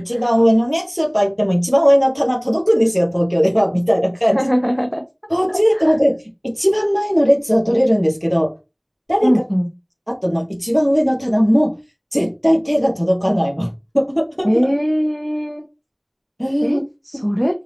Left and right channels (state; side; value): identical; both; correlation 1.00